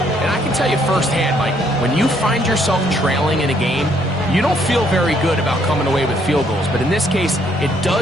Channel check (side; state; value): both; normal; correlation 0.68